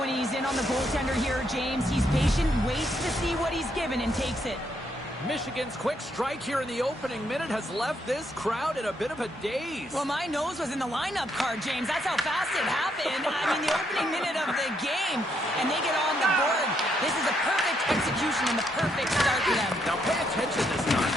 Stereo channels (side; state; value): both; normal; correlation 0.75